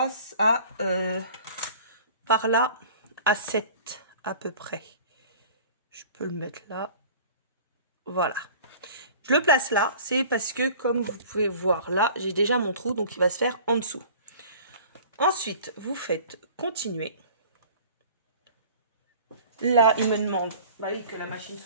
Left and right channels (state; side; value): inverted; both; correlation -0.45